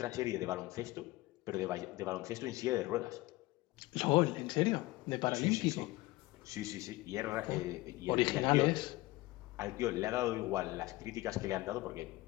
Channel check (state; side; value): quieter; right; 19.6 dB